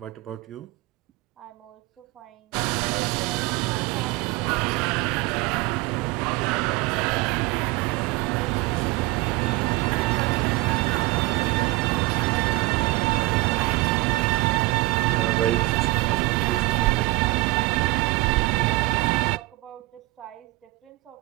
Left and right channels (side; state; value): left; quieter; 22.3 dB